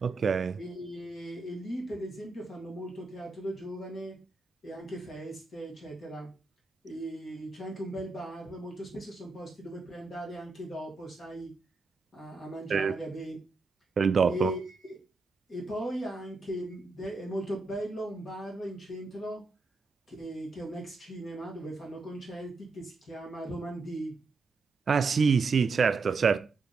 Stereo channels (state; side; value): quieter; left; 4.1 dB